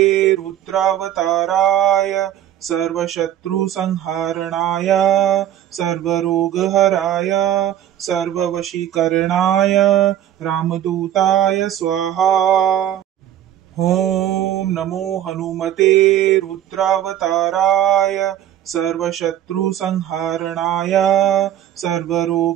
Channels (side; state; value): left; quieter; 11.5 dB